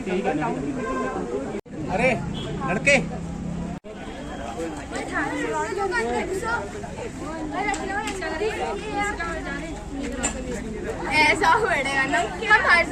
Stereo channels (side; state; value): both; identical; correlation 1.00